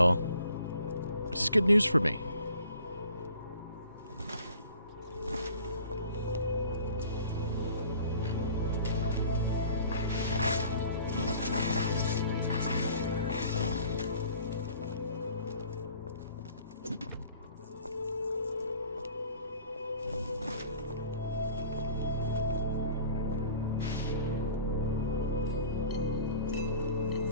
This is good news for me.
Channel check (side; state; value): both; inverted; correlation -0.50